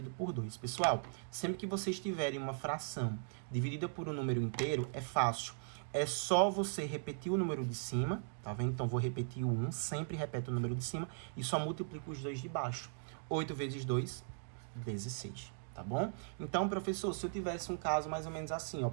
por 2. Pessoal, sempre que vocês tiverem uma fração dividida por um número inteiro, é fácil. É só você repetir o número de cima, tá vendo? Então, vou repetir o 1, sempre repete o número de cima e só multiplico os dois de baixo. 8 vezes 2, 16. tá bom? Então, professor, se eu tivesse um caso mais ou menos assim, ó,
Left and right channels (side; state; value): left; silent; digital silence